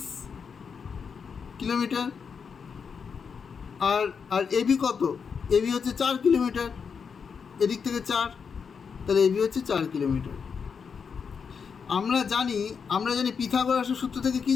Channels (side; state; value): right; quieter; 6.2 dB